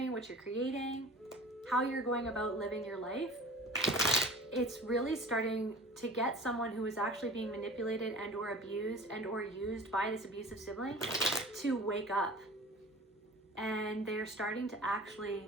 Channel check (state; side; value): normal; both; correlation 0.41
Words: what you're creating, how you're going about living your life. It's really starting to get someone who is actually being manipulated and or abused and or used by this abusive sibling to wake up. And they're starting to actually